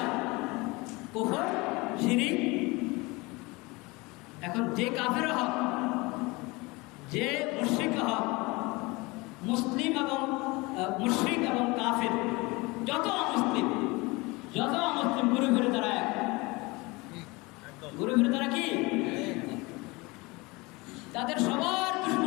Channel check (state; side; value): quieter; right; 24.2 dB